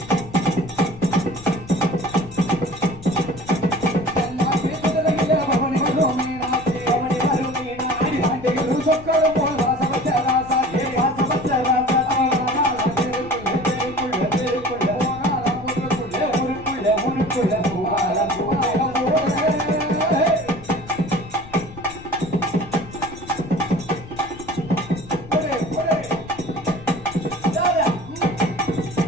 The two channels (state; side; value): noise; left; rumble, 17 dB below the sound